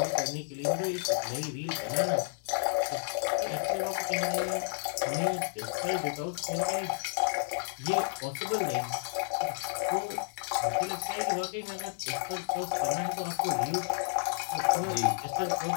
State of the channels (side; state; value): right; silent; digital silence